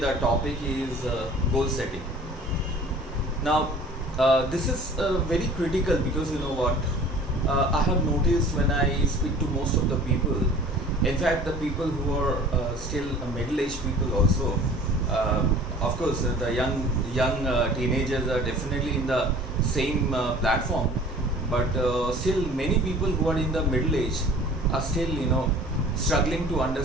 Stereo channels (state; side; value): normal; both; correlation 0.47